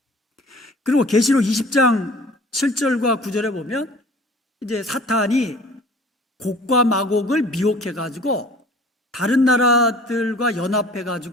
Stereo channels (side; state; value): both; normal; correlation 0.47